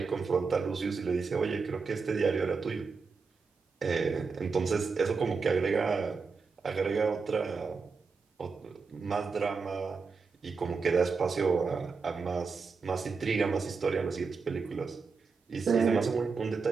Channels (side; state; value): left; quieter; 4.9 dB